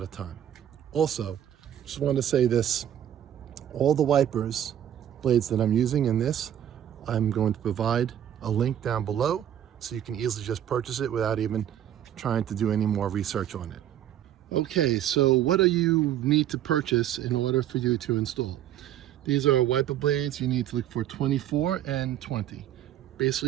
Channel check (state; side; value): quieter; left; 10.9 dB